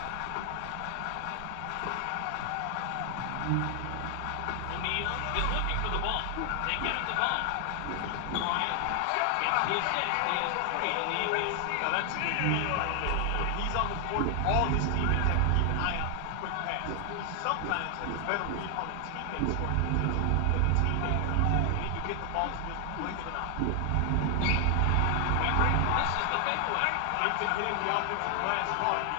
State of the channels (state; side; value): different; both; correlation 0.00